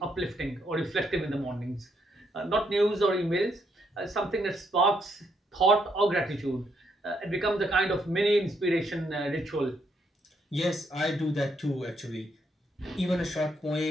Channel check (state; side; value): normal; both; correlation 0.75